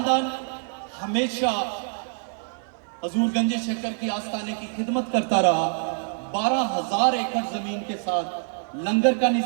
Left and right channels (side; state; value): left; silent; 61 dB below the other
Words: ہمیشہ حضور گنج شکر کی آستانے کی خدمت کرتا رہا. 12,000 ایکڑ زمین کے ساتھ لنگر کا